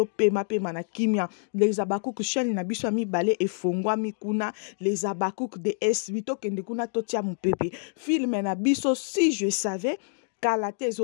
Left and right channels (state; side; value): silent; right; digital silence